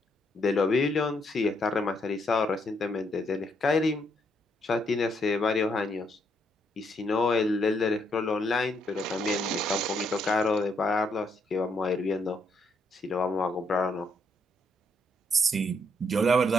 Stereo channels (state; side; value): normal; both; correlation 0.74